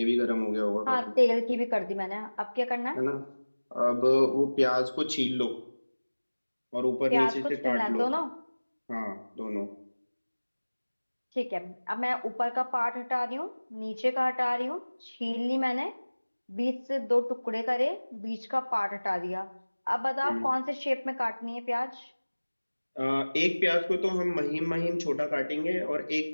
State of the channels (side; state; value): both; inverted; correlation -1.00